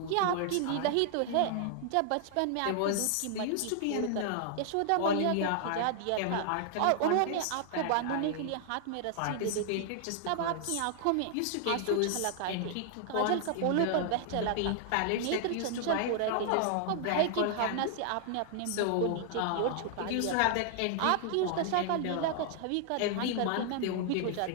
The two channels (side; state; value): both; different; correlation -0.01